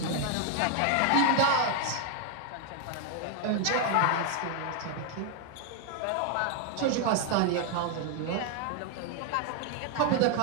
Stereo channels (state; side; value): different; both; correlation 0.00